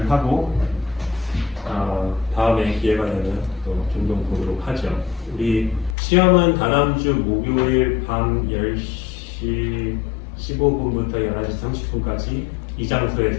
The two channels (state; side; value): drops out; right; at 6.0 s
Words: 하고 다음에 기회가 되면 또 종종 보도록 하죠. 우리 시험은 다다음 주 목요일 밤 10시 15분부터 11시 30분까지 이